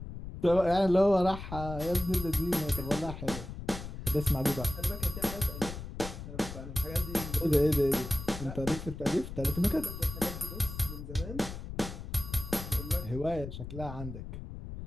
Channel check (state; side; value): noise; left; rumble, 9 dB below the sound